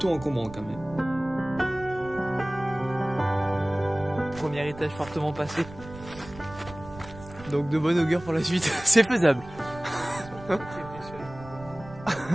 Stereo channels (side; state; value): right; noise; rumble, 16 dB below the sound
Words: encombrant quand même. Premier étage fortement passé. Donc de bonne augure pour la suite. C'est faisable.